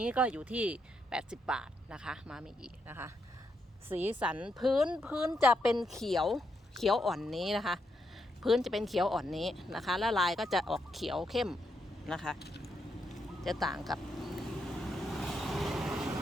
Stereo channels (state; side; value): normal; both; correlation 0.81